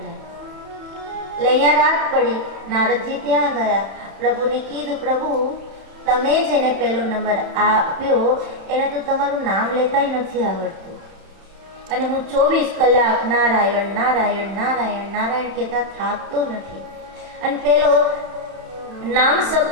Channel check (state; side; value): late; left; 31 ms